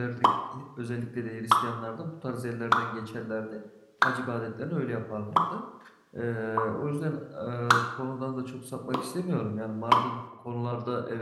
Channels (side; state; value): both; identical; correlation 1.00